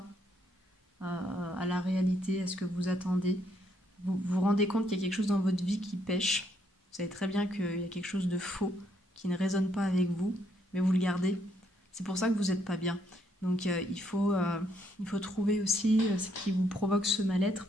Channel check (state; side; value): normal; both; correlation 0.72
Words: à la réalité, à ce que vous attendez. Vous vous rendez compte qu'il y a quelque chose dans votre vie qui pêche. Vous savez très bien qu'il y a quelque chose de faux qui ne résonne pas avec vous, mais vous le gardez. C'est pour ça que vous n'êtes pas bien. Donc il faut trouver aussi ce qui vous provoque ce mal-être